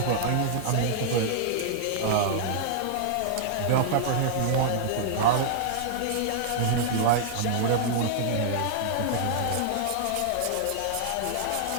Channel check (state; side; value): different; both; correlation -0.01